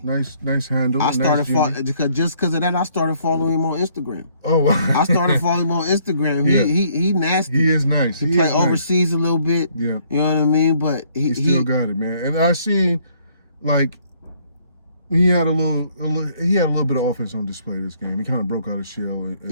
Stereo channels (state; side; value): inverted; both; correlation -0.65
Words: Nice handle. I started just because of that. I started following him on Instagram. Oh, wow. I started following him on Instagram. He nasty. He is nice. He play overseas a little bit. Yeah. You know what I mean? But he still got it, man. And I seen like he had a little bit of offense on display this game. He kind of broke out of shell